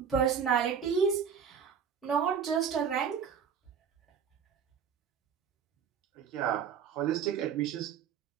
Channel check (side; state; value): left; quieter; 7.4 dB